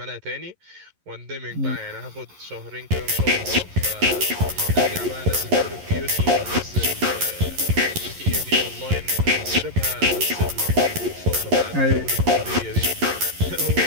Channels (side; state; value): left; late; 11 ms